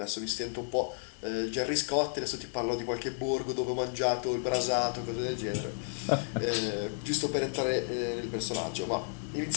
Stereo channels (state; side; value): silent; right; digital silence